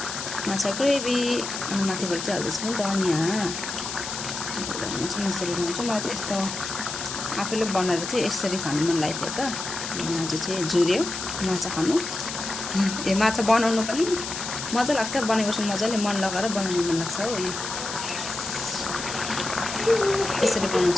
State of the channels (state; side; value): noise; left; hiss, 6 dB below the sound